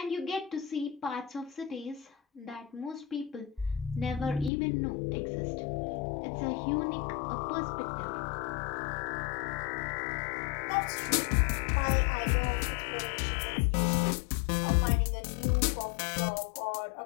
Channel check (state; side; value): drops out; right; at 4.5 s